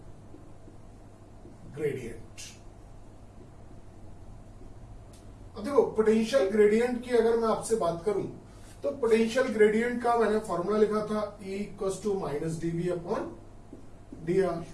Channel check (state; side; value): identical; both; correlation 1.00